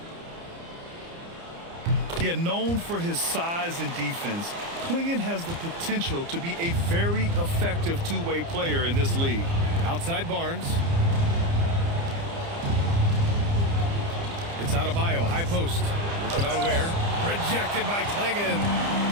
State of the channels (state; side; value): late; left; 30 ms